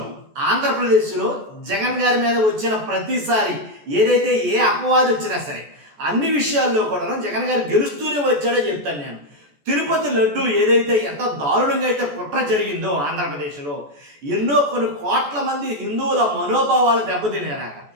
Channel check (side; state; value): left; late; 14 ms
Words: ఆంధ్రప్రదేశ్‌లో జగన్ గారి మీద వచ్చిన ప్రతిసారి ఏదైతే ఏ అపవాదు వచ్చినా సరే, అన్ని విషయాల్లో కూడాను జగన్ గారు గెలుస్తూనే వచ్చాడో చెప్తాను నేను. తిరుపతి లడ్డు ఏదైతే ఎంత దారుణంగా అయితే కుట్ర జరిగిందో ఆంధ్రప్రదేశ్‌లో, ఎన్నో కొన్ని కోట్ల మంది హిందువుల మనోభావాలు దెబ్బతినేలాగా.